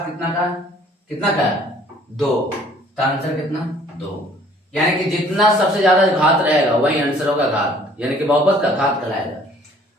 कितना का है 2, तो आंसर कितना 2। यानी कि जितना सबसे ज्यादा घात रहेगा वही आंसर होगा घात, यानी कि बहुपद का घात कहलाएगा।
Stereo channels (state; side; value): normal; both; correlation 0.56